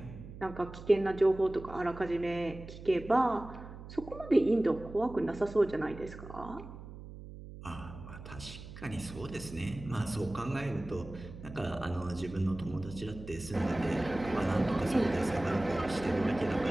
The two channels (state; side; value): noise; right; hum, 13 dB below the sound